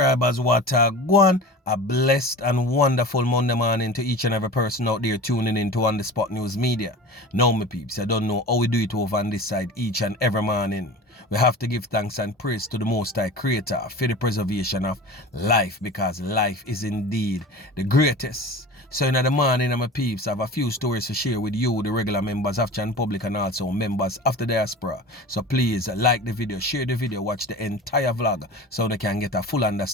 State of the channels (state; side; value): normal; both; correlation 0.35